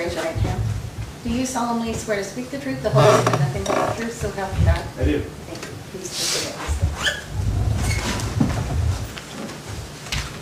your right hand. Do you solemnly swear to speak the truth, the whole truth, and nothing but the truth, so help you God? I do. Thank you. Please take it.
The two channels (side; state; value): both; identical; correlation 1.00